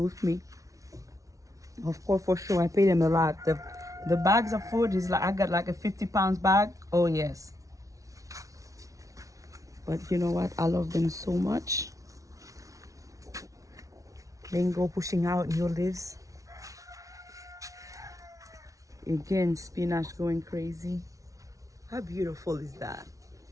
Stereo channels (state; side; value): late; left; 0.16 ms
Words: me. Of course, for sure, I pay them a lot. The bags of food is like, I got like a 50 pounds bag. Oh yes. But you know what? I love them so much. Mango pushing out new leaves. Again, spinach going crazy. How beautiful is that?